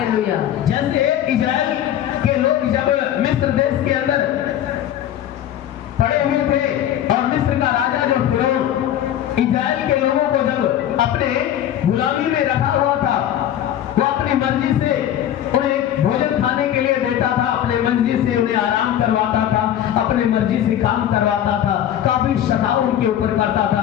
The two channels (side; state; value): right; quieter; 11.1 dB